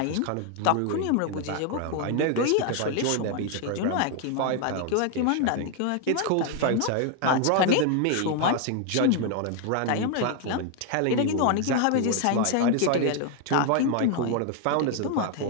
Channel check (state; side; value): different; both; correlation 0.00